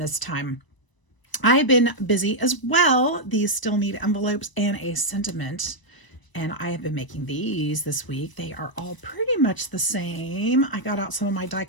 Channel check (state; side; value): late; right; 1.0 ms